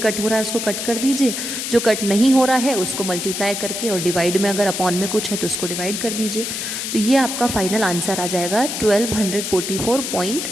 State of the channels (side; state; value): left; noise; hiss, 4 dB below the sound